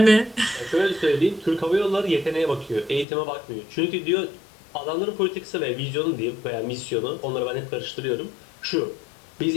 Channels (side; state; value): right; drops out; at 3.1 s